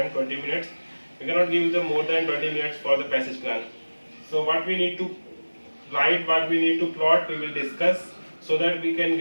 20 minutes. We cannot give them more than 20 minutes for the passage plan. So what we need to write, what we need to plot, we will discuss so that we can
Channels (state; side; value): inverted; both; correlation -1.00